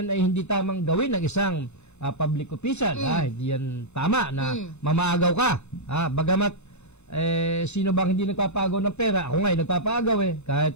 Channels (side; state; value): right; late; 0.81 ms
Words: ay hindi tamang gawin ng isang public official. Hindi yan tama na mamaagaw ka. Bagamat, sino bang hindi nagpapagaw ng pera? Ako nga, nagpapagaw